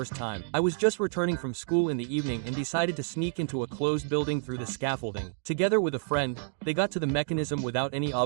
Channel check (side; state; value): left; silent; digital silence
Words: time. I was just returning from school in the evening and decided to sneak into a closed building through the scaffolding. Together with a friend, they got to the mechanism without any